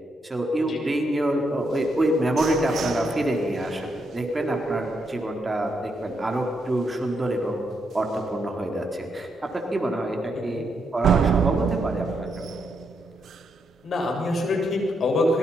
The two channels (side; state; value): both; normal; correlation 0.79